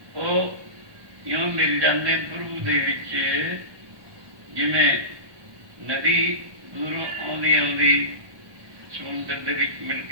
ਉਹ ਇਉਂ ਮਿਲ ਜਾਂਦੇ ਪ੍ਰਭੂ ਦੇ ਵਿੱਚ, ਜਿਵੇਂ ਨਦੀ ਦੂਰੋਂ ਆਉਂਦੀ ਆਉਂਦੀ ਸਮੁੰਦਰ ਦੇ ਵਿੱਚ ਮਿਲ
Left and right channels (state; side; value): late; left; 1.2 ms